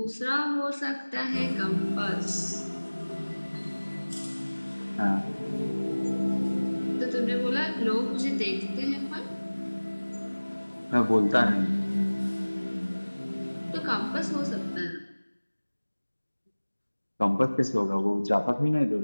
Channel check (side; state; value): both; inverted; correlation -1.00